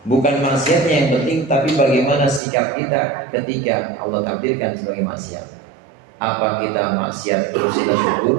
Bukan maksiatnya yang penting, tapi bagaimana sikap kita ketika Allah takdirkan sebagai maksiat. Apa kita maksiat terus kita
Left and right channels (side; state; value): left; drops out; at 2.4 s